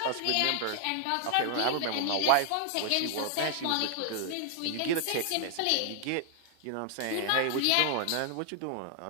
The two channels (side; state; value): both; different; correlation 0.00